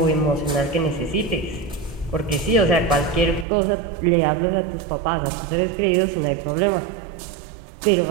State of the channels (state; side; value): drops out; left; at 3.5 s